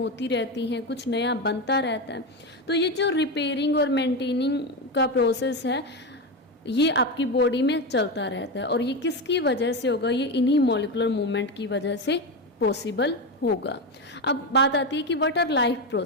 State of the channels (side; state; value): both; normal; correlation 0.15